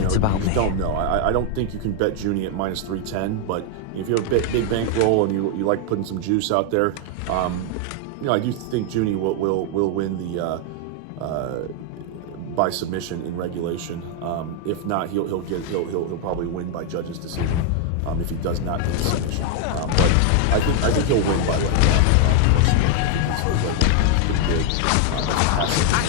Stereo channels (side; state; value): both; different; correlation 0.00